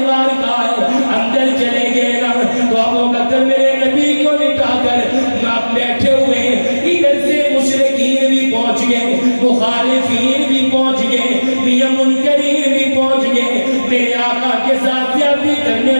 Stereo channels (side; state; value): both; inverted; correlation -1.00